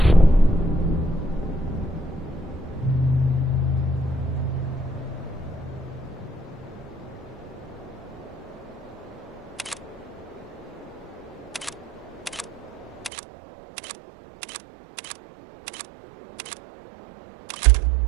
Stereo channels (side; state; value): left; drops out; at 13.1 s